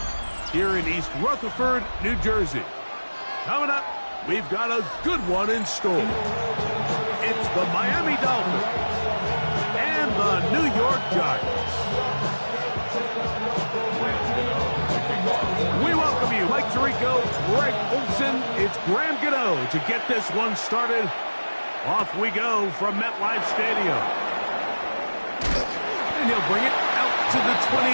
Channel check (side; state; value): both; inverted; correlation -1.00